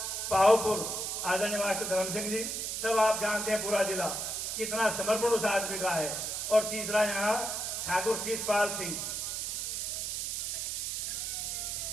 पाहोपुर, आदरणीय मास्टर धर्म सिंह जी, सब आप जानते हैं पूरा जिला कितना समर्पण उस आदमी का है। और तीसरा यहाँ ठाकुर शीशपाल सिंह।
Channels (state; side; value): noise; right; hiss, 2 dB below the sound